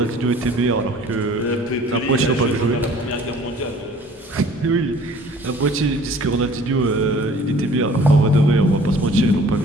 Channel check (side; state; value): both; normal; correlation 0.51